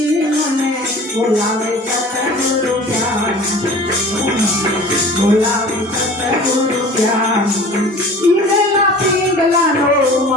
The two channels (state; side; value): normal; both; correlation 0.42